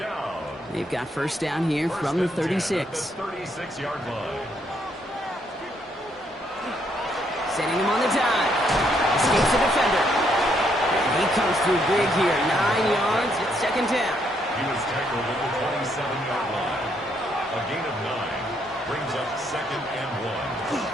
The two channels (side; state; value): both; normal; correlation 0.73